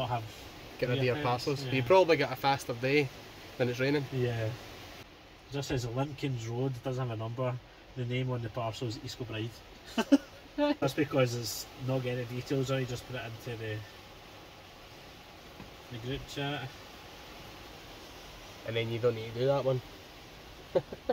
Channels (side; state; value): both; identical; correlation 1.00